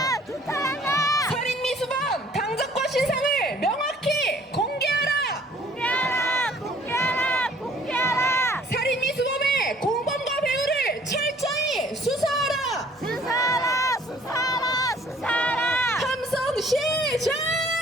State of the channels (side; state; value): both; normal; correlation 0.56